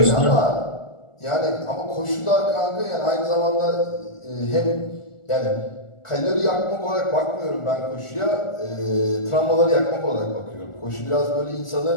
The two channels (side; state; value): right; late; 1.4 ms